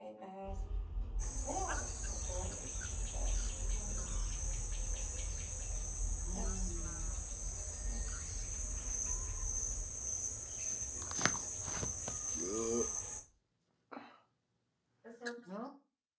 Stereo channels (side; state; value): both; identical; correlation 1.00